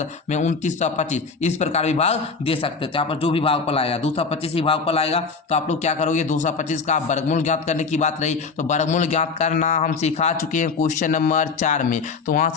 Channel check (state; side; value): quieter; right; 4.8 dB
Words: में 2925, इस प्रकार भी भाग दे सकते थे। यहाँ पर जो भी भागफल आएगा 225 ही भागफल आएगा। तो आप लोग क्या करोगे, 225 का वर्गमूल ज्ञात करने की बात रही, तो वर्गमूल ज्ञात करना हम सिखा चुके हैं क्वेश्चन नंबर 4 में, तो वहां